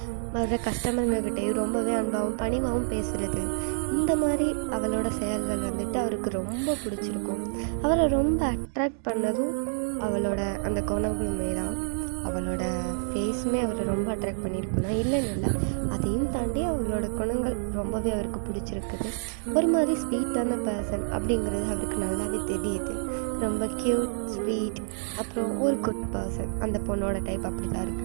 வர்ற கஸ்டமருங்கக்கிட்டேயும் ரொம்பவே அன்பாகவும் பணிவாகவும் பேசுகிறது. இந்த மாதிரி அவளோட செயல்கள் வந்துட்டு அவருக்கு ரொம்ப பிடிச்சிருக்கும். அவரை ரொம்ப அட்ராக்ட் பண்ணதும் அவளோட அந்த குணங்களுமே தான். அவளோட ஃபேஸுமே அவரை ரொம்ப அட்ராக்ட் பண்ணியிருக்கும் தான், இல்லைன்னு இல்லை. அதையும் தாண்டி அவளோட குணங்கள் ரொம்பவே அவருக்கு பிடிச்சிருக்குது. ஒரு மாதிரி ஸ்வீட்டான பர்சன் அப்படிங்கிறது அவருக்கு நல்லாவே தெரியுது. ரொம்ப க்யூட், ஸ்வீட், அப்புறம் ஒரு குட் பர்சன். அந்த பொண்ணோட டைப் அப்படி தான்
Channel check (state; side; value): silent; left; digital silence